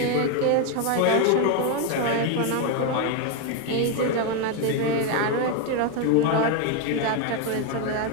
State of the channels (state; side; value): different; both; correlation 0.01